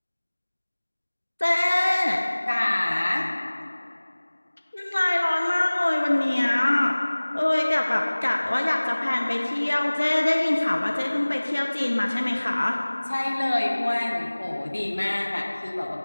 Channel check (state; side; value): inverted; both; correlation -1.00